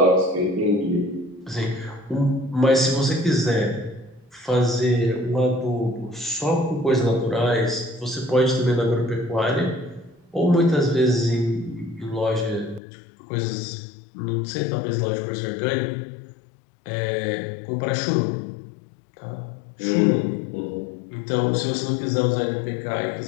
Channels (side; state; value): right; drops out; at 12.8 s